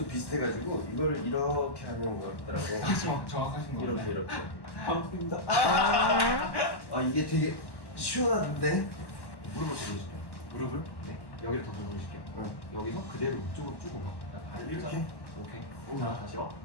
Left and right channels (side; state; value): right; late; 1.1 ms